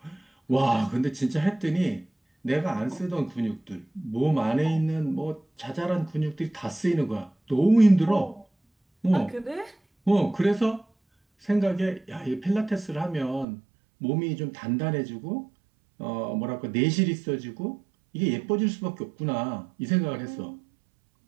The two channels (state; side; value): drops out; left; at 13.5 s